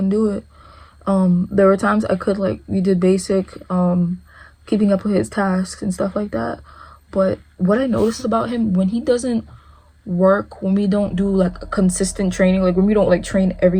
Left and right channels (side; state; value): both; identical; correlation 1.00